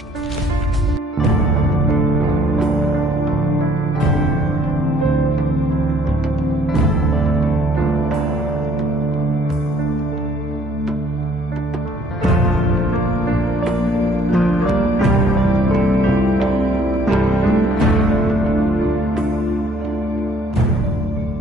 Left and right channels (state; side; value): normal; both; correlation 0.60